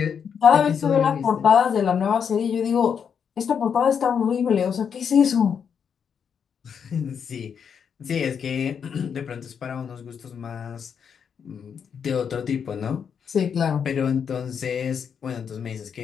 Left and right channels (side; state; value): right; quieter; 7.2 dB